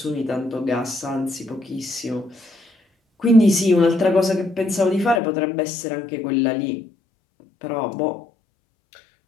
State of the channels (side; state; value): right; drops out; at 5.2 s